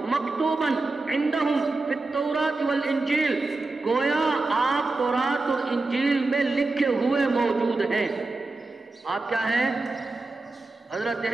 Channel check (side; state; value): left; quieter; 3.4 dB